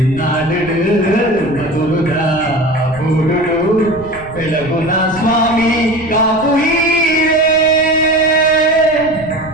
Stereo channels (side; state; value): left; noise; rumble, 17 dB below the sound